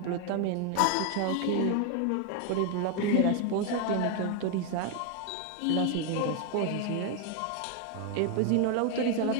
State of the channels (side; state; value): both; different; correlation 0.01